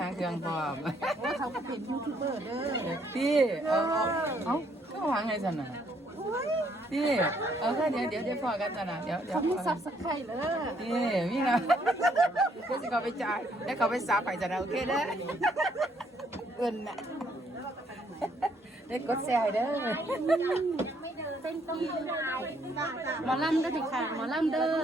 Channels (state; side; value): normal; both; correlation 0.69